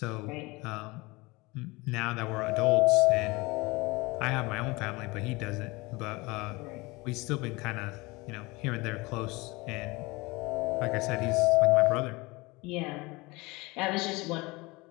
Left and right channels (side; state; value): right; quieter; 23.7 dB